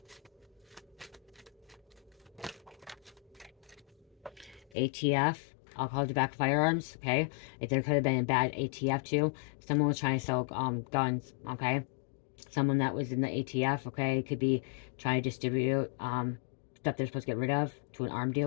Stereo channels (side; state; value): right; drops out; at 4.8 s